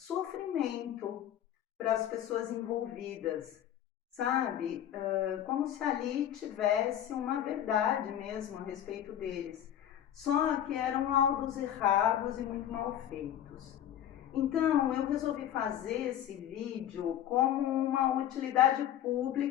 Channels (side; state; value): right; quieter; 10.9 dB